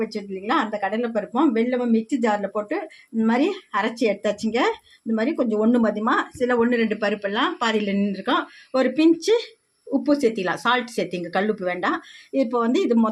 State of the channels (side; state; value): both; identical; correlation 1.00